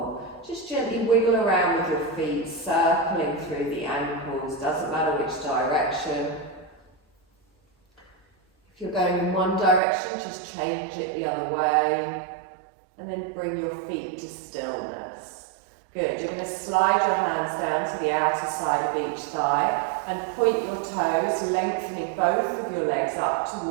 Just gently wiggle around with your feet, circling through the ankles, doesn't matter which direction. If you're going in one direction, just change it the other way. And then bring your feet to stillness. Good, you're going to slide your hands down to the outer side of each thigh and point your toes, lengthening both of your legs up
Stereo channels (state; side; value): drops out; left; at 9.8 s